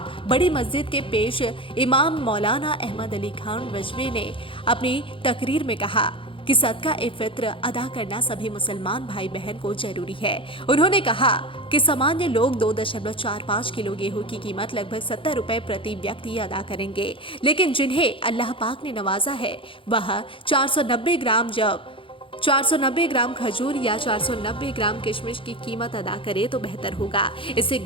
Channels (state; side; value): late; right; 0.25 ms